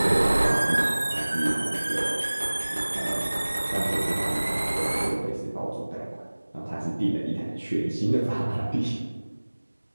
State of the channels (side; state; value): both; inverted; correlation -1.00